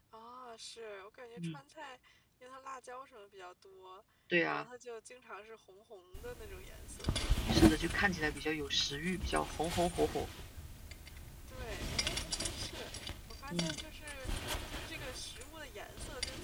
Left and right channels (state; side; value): identical; both; correlation 1.00